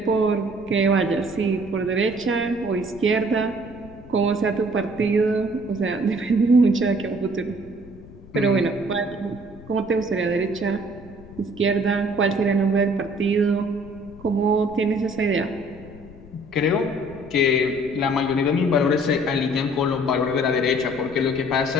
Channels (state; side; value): noise; left; rumble, 19 dB below the sound